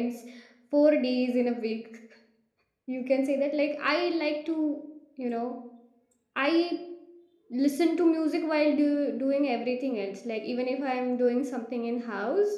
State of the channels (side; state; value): both; identical; correlation 1.00